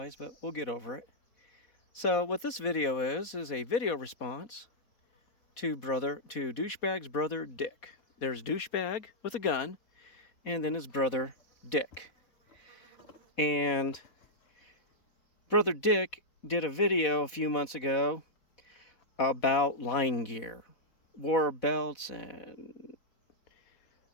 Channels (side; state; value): right; late; 4.1 ms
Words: but we'll get over it. So what this video is a video response to Douchebag's brother Dick. There's Douchebag with a gun, and then his brother Dick. And Brother Dick did a video a few months ago about line gear, war belts, and